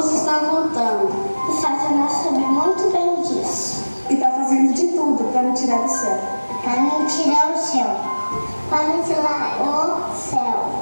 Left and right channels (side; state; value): both; inverted; correlation -1.00